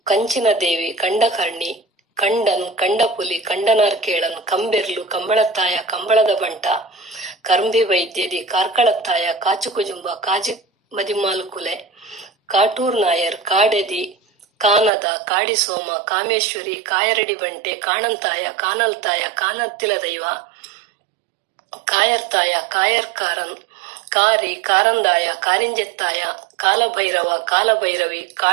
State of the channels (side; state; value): left; drops out; at 14.9 s